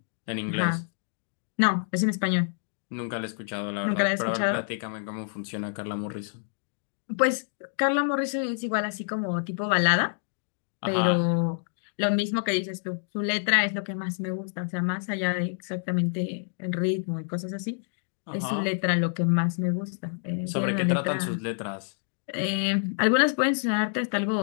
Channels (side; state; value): right; silent; digital silence